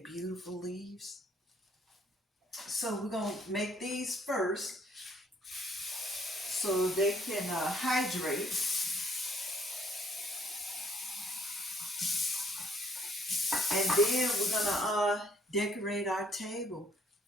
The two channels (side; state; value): both; normal; correlation 0.65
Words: beautiful leaves? So we're gonna make these first so they can hydrate. And then we're gonna decorate our table